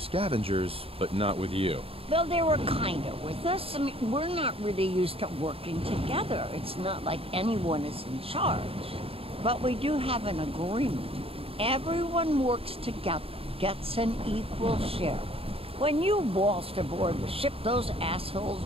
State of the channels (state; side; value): late; left; 0.27 ms